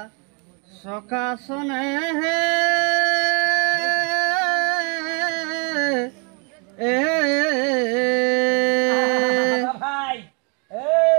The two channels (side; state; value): left; quieter; 33.9 dB